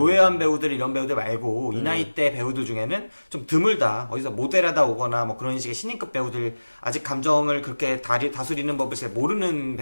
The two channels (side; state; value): both; inverted; correlation -1.00